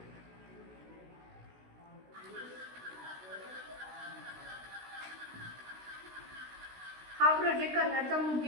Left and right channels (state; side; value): late; left; 16 ms